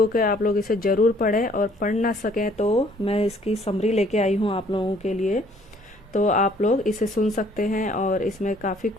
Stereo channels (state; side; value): normal; both; correlation 0.60